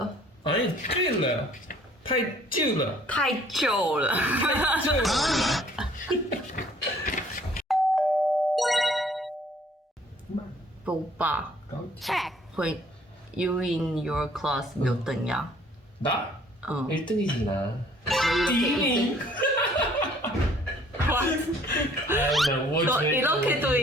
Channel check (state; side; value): normal; both; correlation 0.58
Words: 아니 醉了太旧了太旧了。旧了 오빠 check. when you in your class 몇 등이야? 나? 어. 1등이지 나. 이렇게 1등. 아나 뭐 너 이렇게도